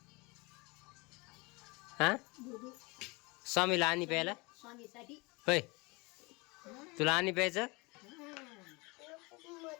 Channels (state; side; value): quieter; right; 26.4 dB